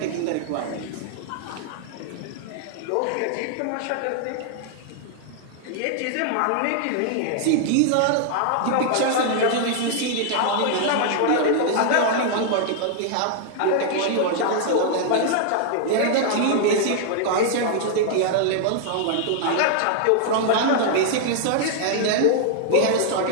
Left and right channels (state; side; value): different; both; correlation -0.01